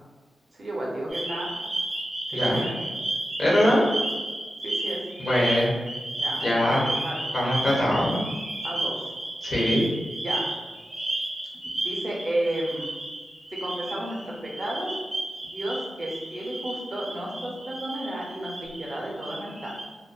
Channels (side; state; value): both; normal; correlation 0.91